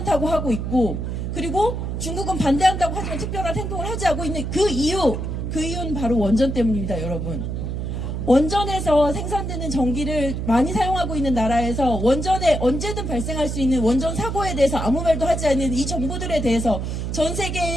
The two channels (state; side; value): noise; right; hum, 3 dB below the sound